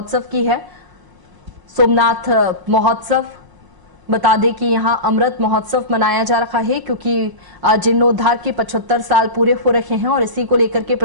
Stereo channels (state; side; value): late; left; 1.0 ms